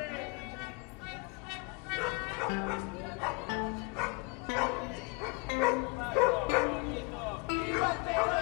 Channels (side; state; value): right; quieter; 30.2 dB